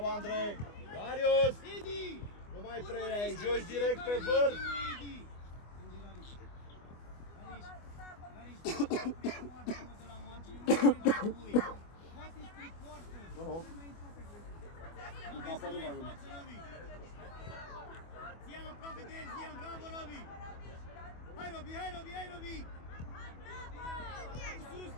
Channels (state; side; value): late; right; 24 ms